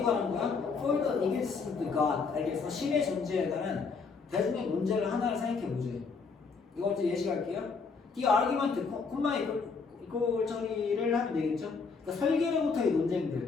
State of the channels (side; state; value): right; quieter; 4.9 dB